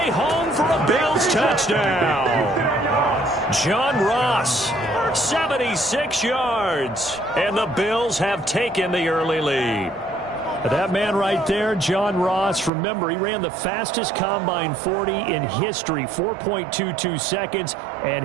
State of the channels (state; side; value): drops out; left; at 12.7 s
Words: home for a Bills touchdown. John Ross, 76 yards. And the Bills have taken the early lead. That man right there, John Ross, remember, he ran the fastest combine 40 in history, 4.22 seconds, and